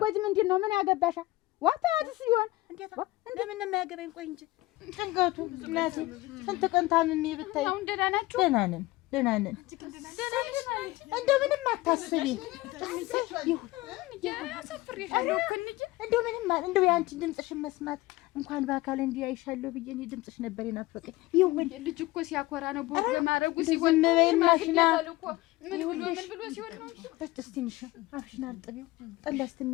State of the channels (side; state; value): right; quieter; 19.2 dB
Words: ምንድን ነው? ምን ያገባሻ? ዋታዲስ ይሆን እንዴት እንደምን ነው የሚያገባኝ? ቆይ እንጂ ጭንቀቱ እናቴ ስንት ቀን ታምሜ ብታይ። አሁን ደህና ናችሁ? ደህና ነን። እንደምንም አታስቢ። እንደው የአንቺን ድምፅሽን መስማት እንኳን በአካል እንዲህ አይሻለሁ ብዬ እኔ ድምፅሽ ነበር የናፈቀኝ። ይሁን ልጅ እኮ ሲያኮራ ነው ቦግ ማረጉ ሲሆን ዝም በይ ማሽና ምን ብሎ ሲሆን ነው። እስቲ ትንሽ አፍሽን አርጥቢው ጠላ